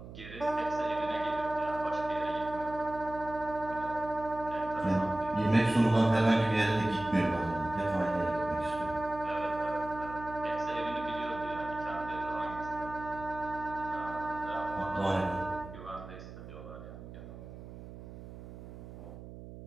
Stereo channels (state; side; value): noise; right; hum, 13 dB below the sound